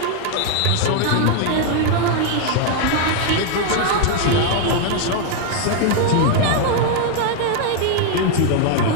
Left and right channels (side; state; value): both; different; correlation 0.00